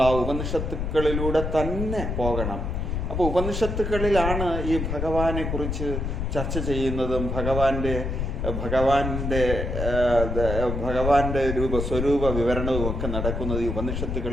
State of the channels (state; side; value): noise; left; rumble, 3 dB below the sound